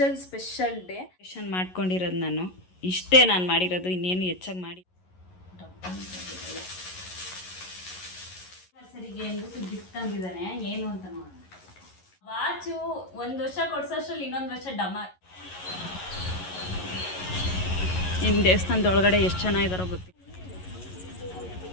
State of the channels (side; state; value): right; late; 11 ms